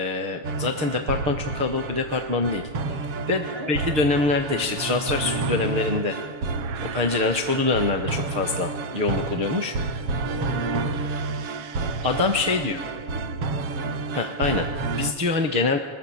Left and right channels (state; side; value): late; left; 6.6 ms